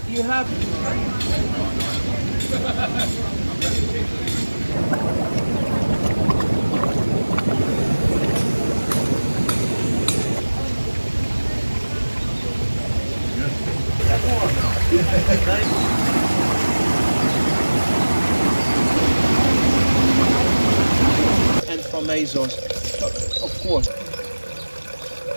you have and from Azores, of course.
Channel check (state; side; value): inverted; both; correlation -1.00